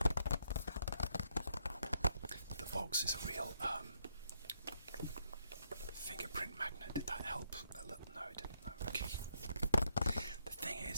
The box is a real fingerprint magnet. Did that help? No, it didn't. No, okay. The thing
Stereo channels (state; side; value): inverted; both; correlation -0.76